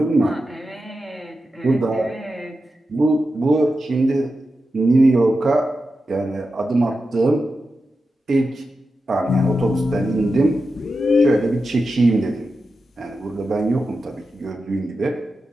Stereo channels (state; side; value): normal; both; correlation 0.90